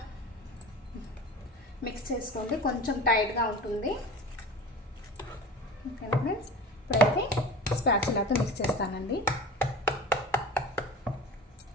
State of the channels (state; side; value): normal; both; correlation 0.34